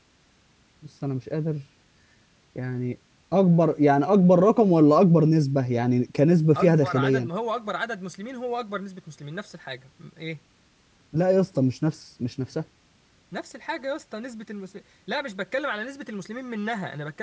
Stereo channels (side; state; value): both; identical; correlation 1.00